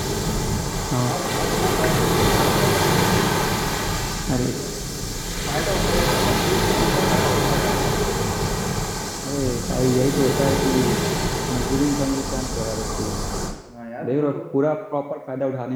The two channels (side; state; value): both; identical; correlation 1.00